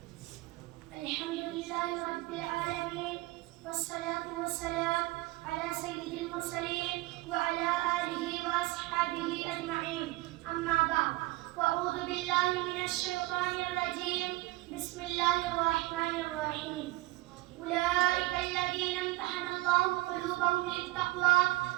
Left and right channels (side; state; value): left; quieter; 20.0 dB